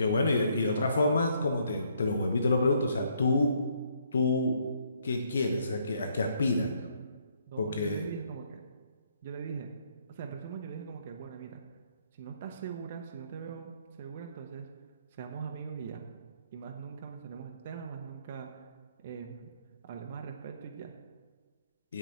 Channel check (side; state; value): both; inverted; correlation -0.69